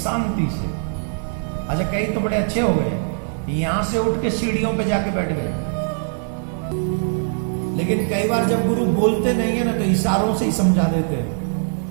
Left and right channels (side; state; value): left; silent; 59 dB below the other